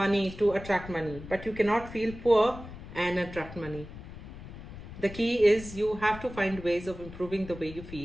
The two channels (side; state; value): left; noise; rumble, 13 dB below the sound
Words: to attract money, but you cannot feel poor and attract money. The key is you have to find ways of improving the way you